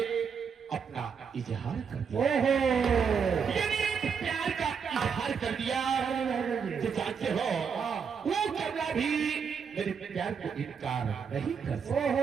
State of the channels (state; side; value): quieter; left; 6.4 dB